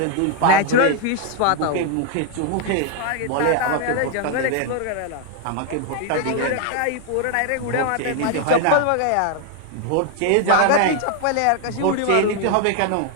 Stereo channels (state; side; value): different; both; correlation 0.00